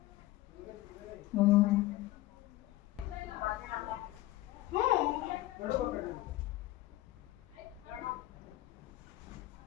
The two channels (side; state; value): right; quieter; 16.7 dB